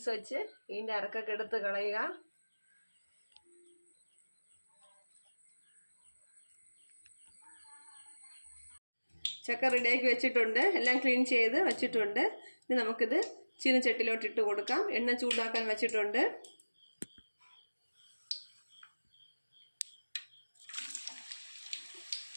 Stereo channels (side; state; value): both; inverted; correlation -1.00